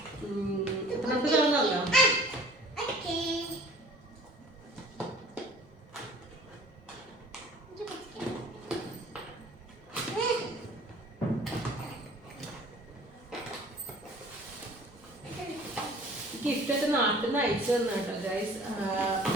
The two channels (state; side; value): normal; both; correlation 0.49